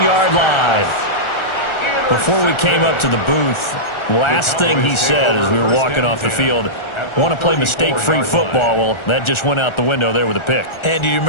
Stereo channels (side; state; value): right; late; 1.4 ms